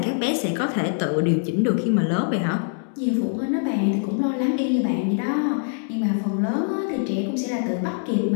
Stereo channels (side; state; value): right; silent; digital silence